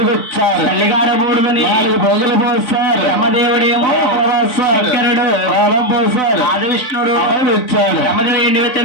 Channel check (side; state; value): right; late; 3.6 ms